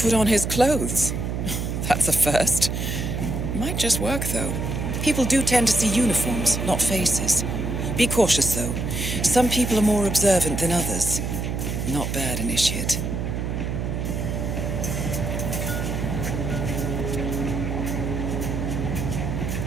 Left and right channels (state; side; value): noise; right; hum, 2 dB below the sound